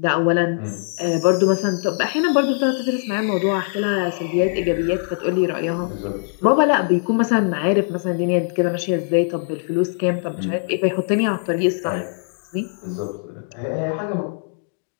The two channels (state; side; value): silent; right; digital silence